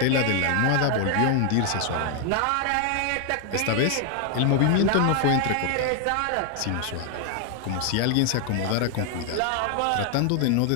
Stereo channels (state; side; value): different; both; correlation 0.00